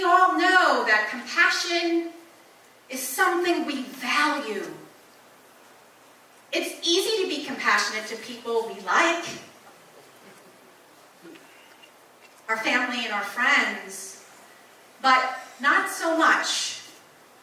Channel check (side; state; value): both; identical; correlation 1.00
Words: all know that compassion is something we value. It's easy to be compassionate to people we like, our family and our friends, but not so much